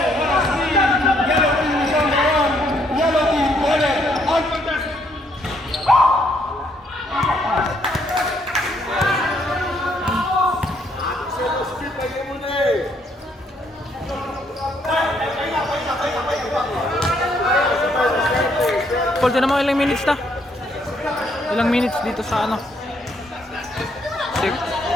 what a steal. Yellow team is on the run. Yellow team, Bennett. Paul, tinan mo ilang minutes na? Ilang minutes dito sa ano? 6.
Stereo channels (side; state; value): both; normal; correlation 0.70